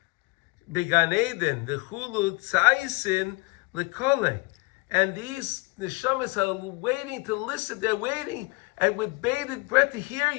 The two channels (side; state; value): right; quieter; 26.3 dB